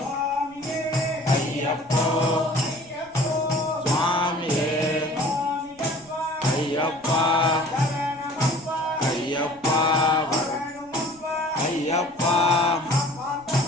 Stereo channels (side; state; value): left; noise; rumble, 29 dB below the sound